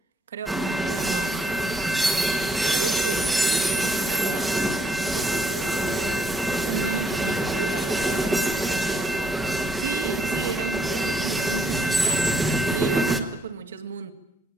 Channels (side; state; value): both; normal; correlation 0.72